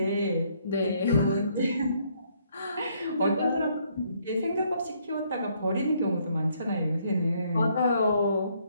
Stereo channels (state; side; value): inverted; both; correlation -0.69